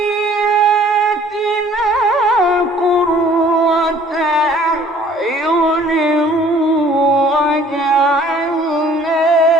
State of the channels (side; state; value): both; normal; correlation 0.55